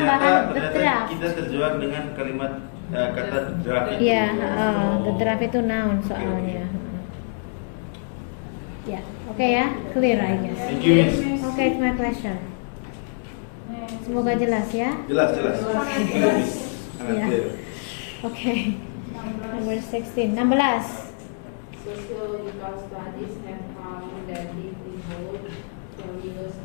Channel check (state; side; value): silent; right; digital silence